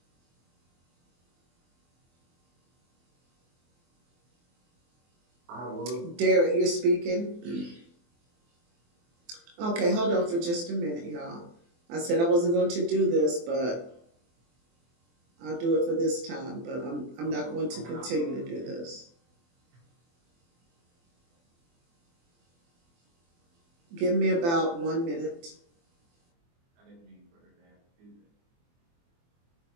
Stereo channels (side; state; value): left; late; 24 ms